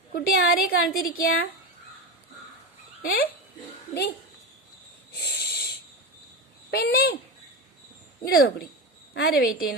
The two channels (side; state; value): both; normal; correlation 0.20